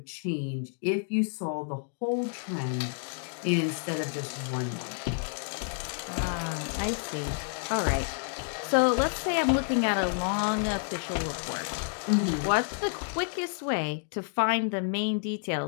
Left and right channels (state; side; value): silent; right; 58 dB below the other